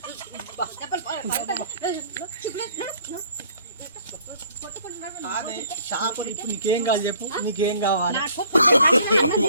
చేపలు ఇప్పుడు నీకేం కావాలి చెప్పు నీకేం కావాలి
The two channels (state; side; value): inverted; both; correlation -0.58